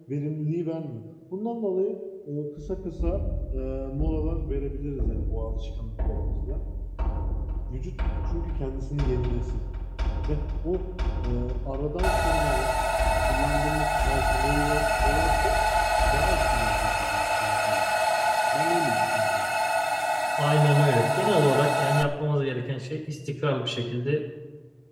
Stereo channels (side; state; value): both; identical; correlation 1.00